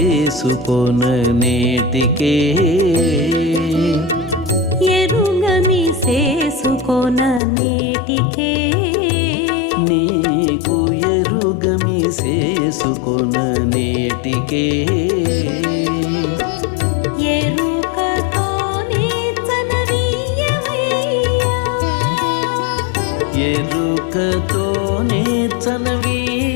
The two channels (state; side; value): drops out; right; at 7.4 s